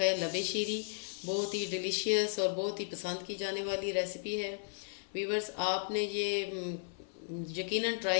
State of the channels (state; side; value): silent; right; 54 dB below the other